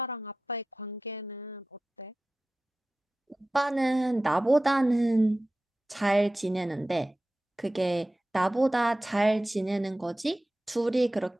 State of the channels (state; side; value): normal; both; correlation 0.95